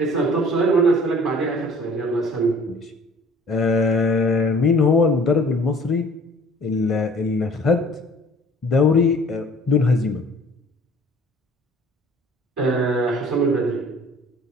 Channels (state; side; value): normal; both; correlation 0.51